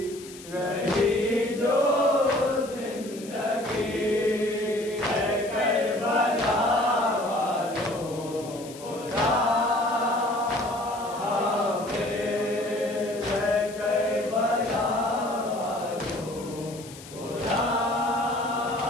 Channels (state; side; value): noise; left; hiss, 17 dB below the sound